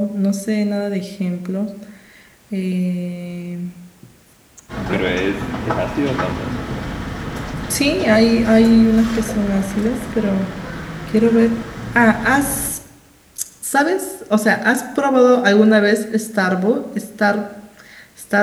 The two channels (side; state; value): both; identical; correlation 1.00